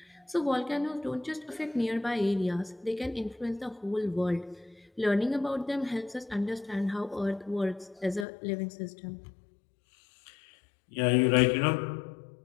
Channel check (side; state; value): right; drops out; at 8.2 s